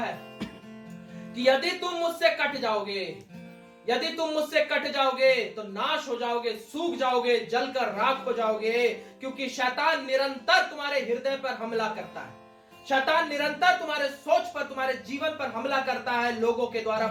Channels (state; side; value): identical; both; correlation 1.00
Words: कि यदि तुम मुझसे कट जाओगे, यदि तुम मुझसे कट जाओगे तो नाश हो जाओगे, सूख जाओगे, जलकर राख हो जाओगे। क्योंकि शैतान निरंतर तुम्हारे हृदय पर हमला करता है। शैतान निरंतर तुम्हारे सोच पर, तुम्हारे जीवन पर हमला करता है, लोगों के द्वारा,